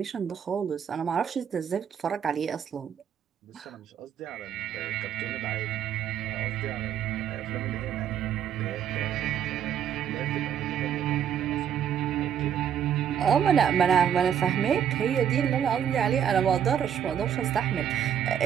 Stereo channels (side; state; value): left; quieter; 9.0 dB